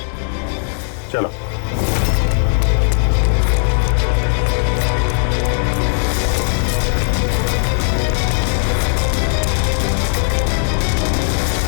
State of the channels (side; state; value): right; silent; 55 dB below the other